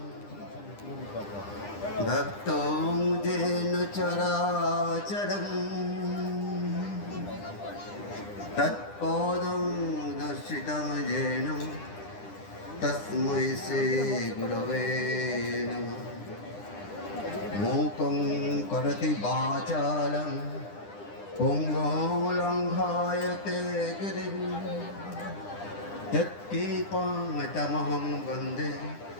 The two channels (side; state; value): right; late; 9.9 ms